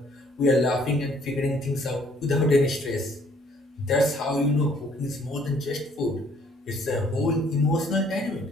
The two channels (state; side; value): normal; both; correlation 0.62